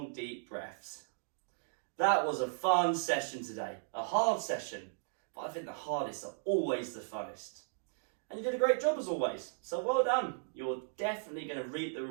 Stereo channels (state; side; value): silent; left; digital silence